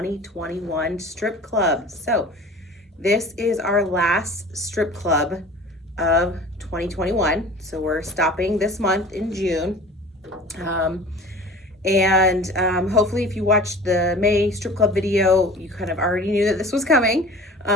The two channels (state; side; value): normal; both; correlation 0.41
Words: strip club. So this is our last strip club of 2021. So we're stopping this month in June. Hopefully if you watched the May strip club video, you kind of already knew that this was coming.